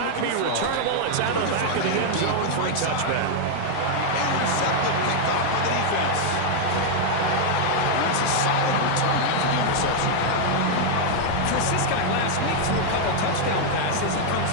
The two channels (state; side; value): different; both; correlation 0.00